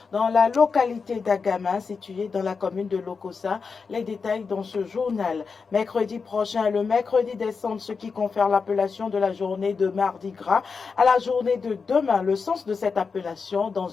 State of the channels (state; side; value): quieter; right; 5.1 dB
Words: dans la localité d'Agama, située dans la commune de Lokossa. Les détails dans ce journal. Mercredi prochain, le mercredi décembre, ce qui confère l'appellation de la journée de Mardi Gras à la journée de demain. Le sens de cette appellation